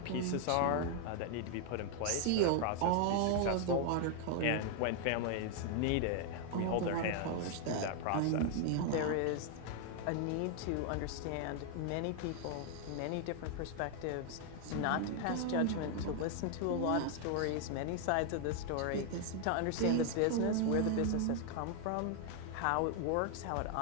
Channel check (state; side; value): different; both; correlation 0.00